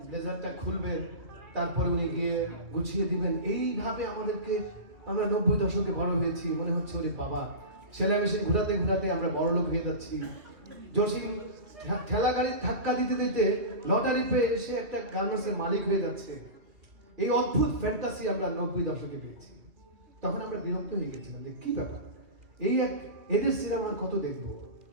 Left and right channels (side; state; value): left; late; 2.5 ms